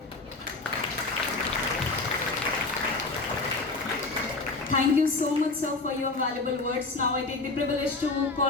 Thank you so much, sir, for your valuable words. Now I take the privilege to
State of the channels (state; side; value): quieter; right; 3.5 dB